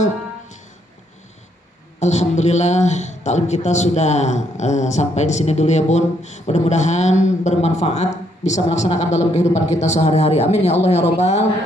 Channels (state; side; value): normal; both; correlation 0.72